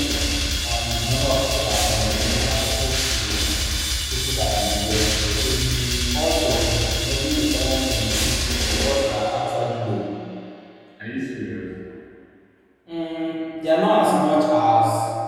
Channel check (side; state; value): both; identical; correlation 1.00